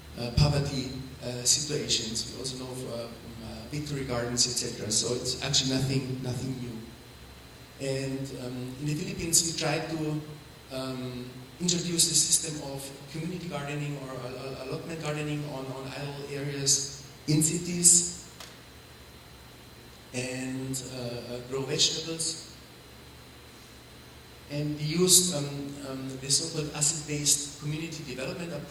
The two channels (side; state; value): both; identical; correlation 1.00